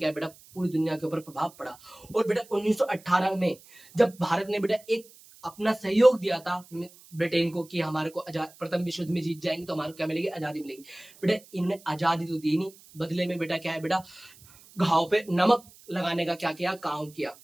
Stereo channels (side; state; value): right; noise; hiss, 24 dB below the sound